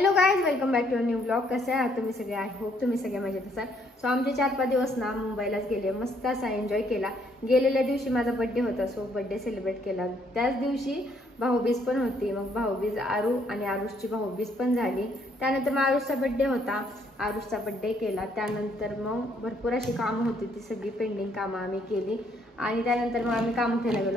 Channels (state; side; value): normal; both; correlation 0.68